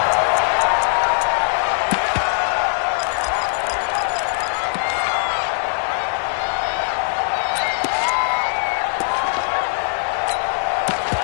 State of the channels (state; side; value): silent; right; 60 dB below the other